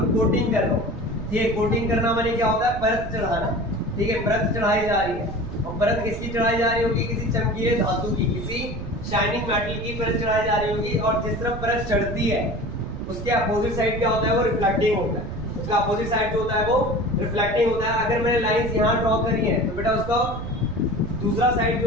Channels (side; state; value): right; noise; rumble, 8 dB below the sound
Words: कोटिंग कर रहा हूँ। ठीक है, कोटिंग करना माने क्या होता है, परत चढ़ाना। ठीक है, परत चढ़ाई जा रही है, और परत किसकी चढ़ाई जा रही होगी, किसी चमकीले धातु की, किसी शाइनिंग मेटल की परत चढ़ाई जा रही होगी। और जिस तरफ परत चढ़ती है उसके अपोजिट साइड क्या होता है, वो रिफ्लेक्टिंग होता है। उसका अपोजिट साइड जो होता है वो रिफ्लेक्टिंग होता है। अगर मैंने लाइंस यहाँ ड्रॉ करी है तो बेटा उसका दूसरा साइड